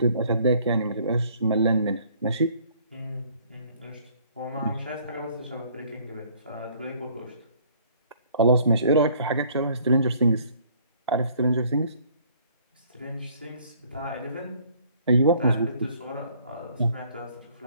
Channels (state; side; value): inverted; both; correlation -0.60